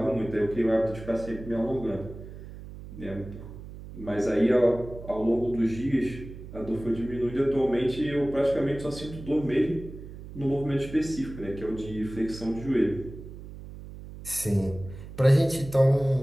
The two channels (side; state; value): right; noise; hum, 13 dB below the sound